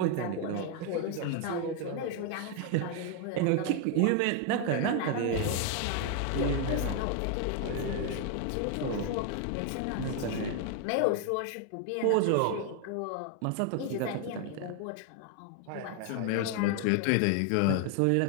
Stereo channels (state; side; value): different; both; correlation 0.01